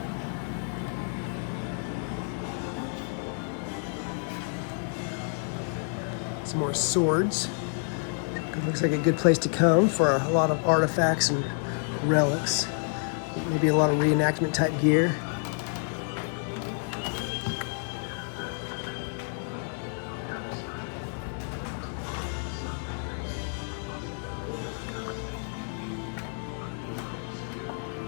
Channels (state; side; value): silent; right; 58 dB below the other